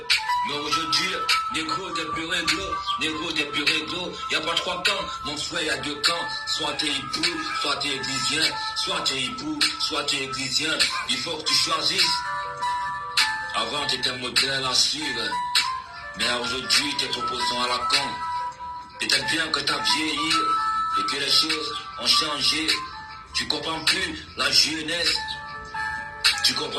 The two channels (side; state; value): both; identical; correlation 1.00